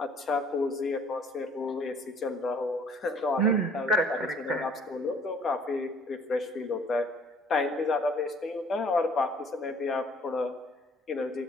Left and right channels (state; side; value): normal; both; correlation 0.57